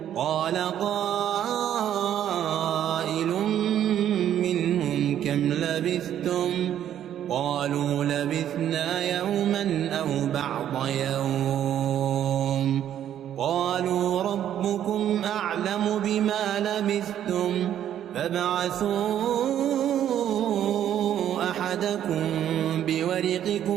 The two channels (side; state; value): left; quieter; 10.6 dB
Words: قال قائل منهم كم لبثتم قالوا لبثنا يوما أو بعض يوم قالوا ربكم أعلم بما لبثتم فابعثوا أحدكم